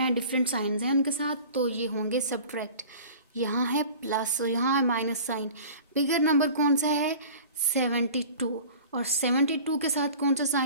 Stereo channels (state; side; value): inverted; both; correlation -0.42